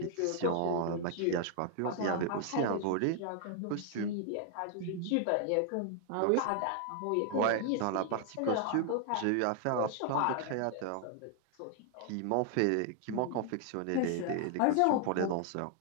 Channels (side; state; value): both; different; correlation 0.00